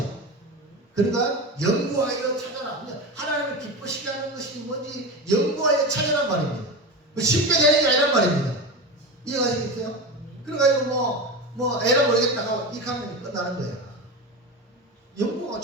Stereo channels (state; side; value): normal; both; correlation 0.24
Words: 그러니까 연구하여 찾아라. 하나님을 기쁘시게 하는 것이 뭔지 연구하여 찾아란 말입니다. 쉽게 되는 게 아니란 말입니다. 이해가시겠어요? 그래가지고 에라 모르겠다 하고 이 하면 끝나는 거야. 연구가